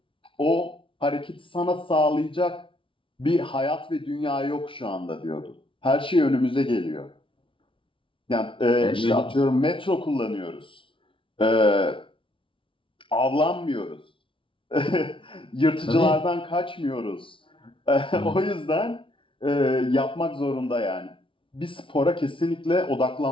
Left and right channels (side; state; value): right; late; 0.25 ms